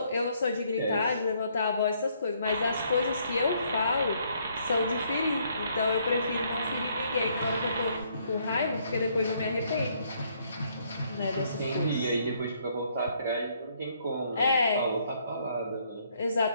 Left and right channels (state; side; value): inverted; both; correlation -0.68